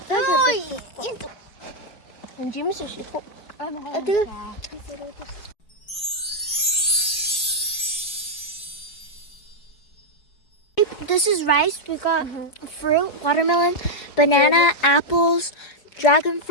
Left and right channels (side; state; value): right; late; 4.7 ms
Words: This is rice. We got fruit, watermelon, banana, apples, dragon